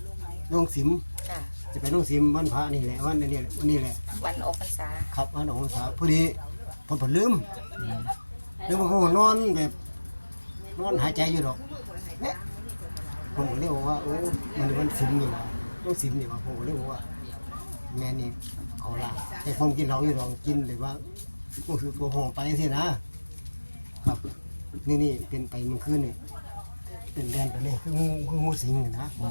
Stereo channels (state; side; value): inverted; both; correlation -1.00